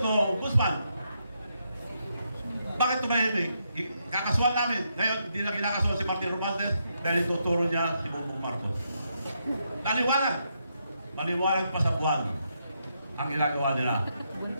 Ombudsman. Bakit tumahimik? Kakasuhan namin. Ngayon, hindi na kinakasuhan si Martin Romualdez dahil ituturo niya si Bongbong Marcos. Maliwanag. Maliwanag pa sa buwan ang ginagawa nila.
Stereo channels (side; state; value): both; inverted; correlation -0.80